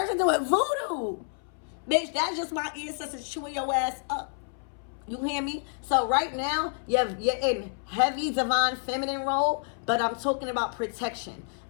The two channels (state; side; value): silent; right; 59 dB below the other